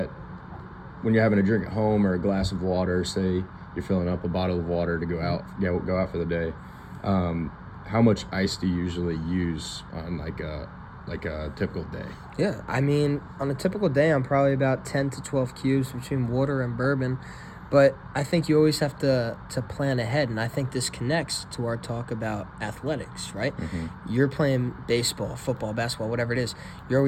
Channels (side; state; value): both; identical; correlation 1.00